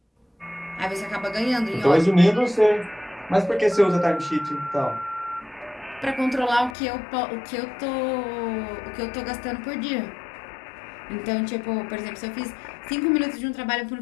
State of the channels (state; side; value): drops out; right; at 6.8 s